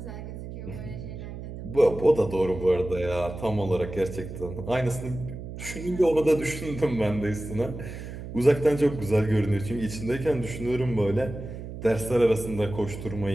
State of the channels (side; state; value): right; noise; hum, 10 dB below the sound